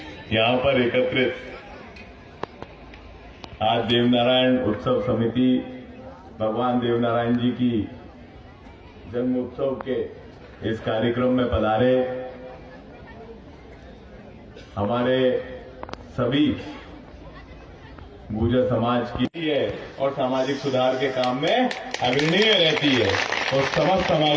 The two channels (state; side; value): identical; both; correlation 1.00